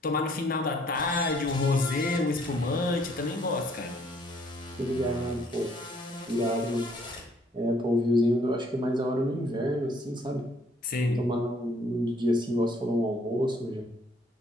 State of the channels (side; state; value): both; normal; correlation 0.63